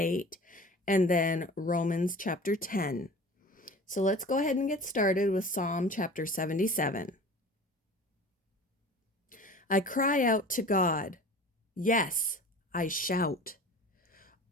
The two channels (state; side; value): normal; both; correlation 0.40